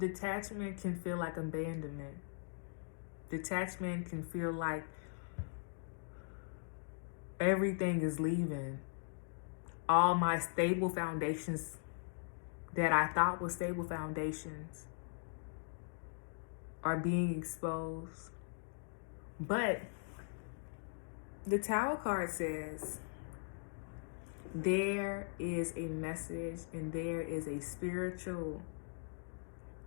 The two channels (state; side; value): silent; right; digital silence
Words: can feel like abandonment. Detachment can feel like everything is leaving. All my stable foundations that I thought were stable foundations are being exposed. But the Tower card says there is a message and there is a spiritual